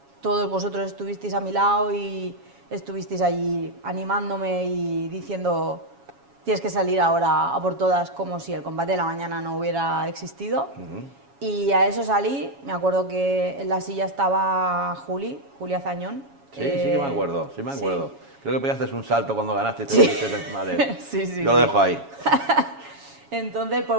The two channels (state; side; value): late; left; 7.2 ms